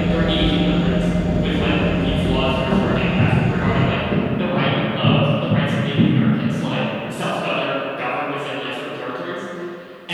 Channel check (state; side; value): identical; both; correlation 1.00